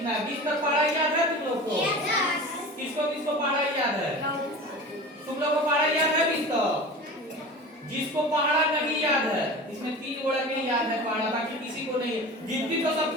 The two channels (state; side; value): normal; both; correlation 0.34